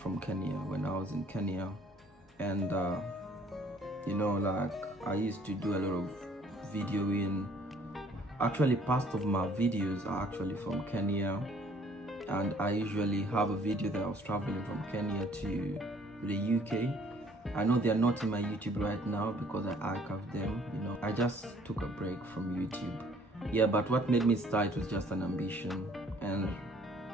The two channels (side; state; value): both; normal; correlation 0.59